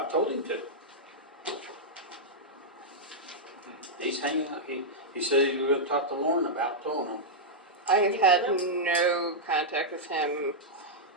told him to. He's hanging out. He said he was gonna talk to Lauren about towing them. I have had no contact with him.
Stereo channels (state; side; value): normal; both; correlation -0.07